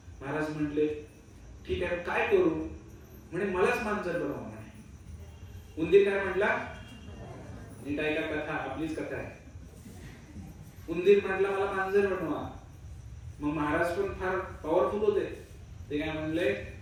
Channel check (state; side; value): identical; both; correlation 1.00